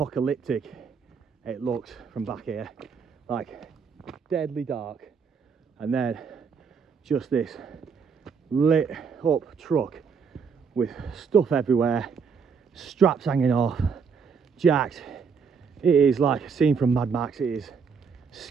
it looks from back here, like deadly dark, and then just this lit up truck with stuff everywhere, straps hanging off, jacked. It is like a scene from Mad Max. It is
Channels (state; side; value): quieter; left; 5.9 dB